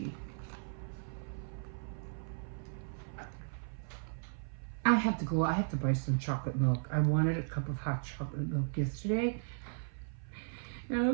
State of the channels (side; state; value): left; silent; 54 dB below the other